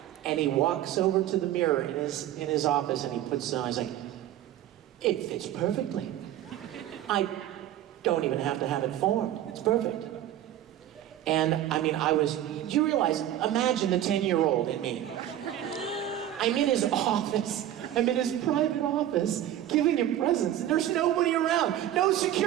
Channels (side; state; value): left; quieter; 12.2 dB